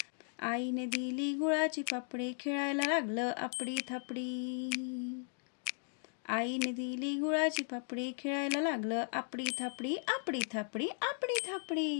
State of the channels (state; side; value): silent; right; 53 dB below the other